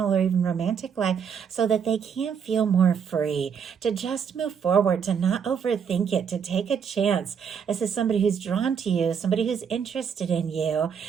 or even romantic life so that they can feel more free, to just move forward, to not overthink it, to take a chance. This is somebody who's drawn to you, somebody who's interested in you,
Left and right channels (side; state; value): left; quieter; 7.1 dB